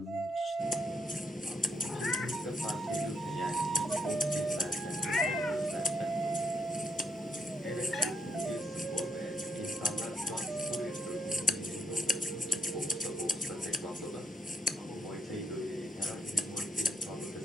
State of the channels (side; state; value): both; normal; correlation 0.77